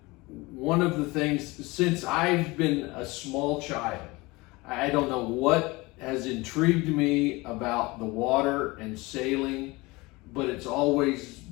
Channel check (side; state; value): right; quieter; 23.0 dB